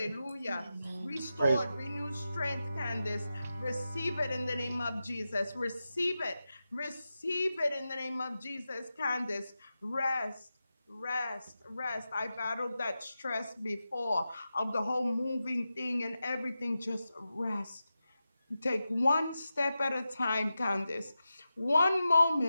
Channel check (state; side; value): inverted; both; correlation -0.92